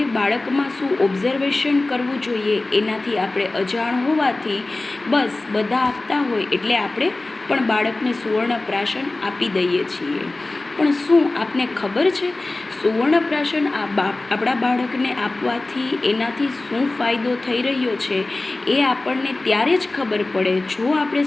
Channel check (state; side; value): quieter; right; 3.0 dB